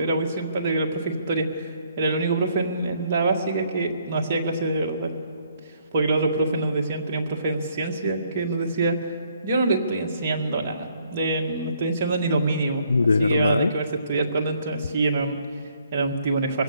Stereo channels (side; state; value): both; inverted; correlation -0.68